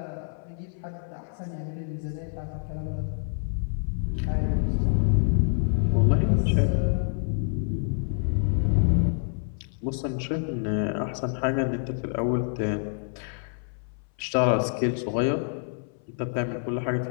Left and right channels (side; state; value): right; silent; 59 dB below the other